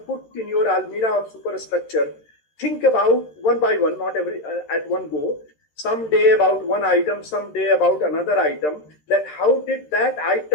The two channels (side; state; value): right; late; 13 ms